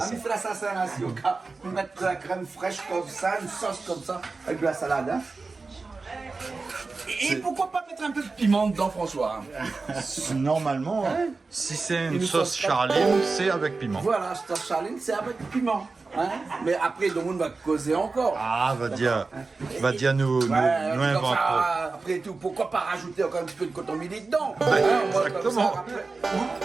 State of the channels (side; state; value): left; quieter; 4.0 dB